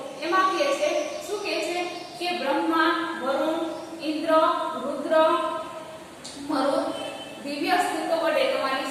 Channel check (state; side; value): identical; both; correlation 1.00